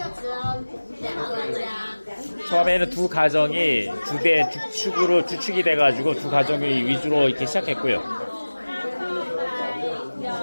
只有2个家。 처음에는 두 가정이 주대 주축으로 주축이 돼가지고 두 가정이 위주로 이렇게 시작했고요.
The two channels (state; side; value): inverted; both; correlation -1.00